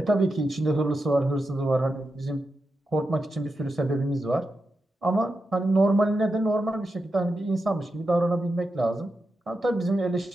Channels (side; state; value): both; normal; correlation 0.88